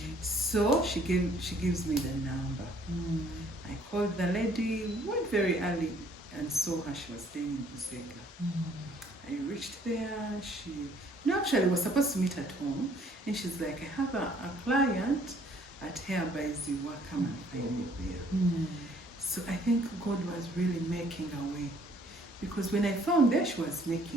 So she gives me the number. I called the lady, went very early and saw her. She was staying in Busega. I reached there. Actually was supposed to meet at home, and she's like, I have a client at Hair by Ziwa, come and find me there. So I think God was really making a way, because when I found there, she was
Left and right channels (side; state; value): both; normal; correlation 0.60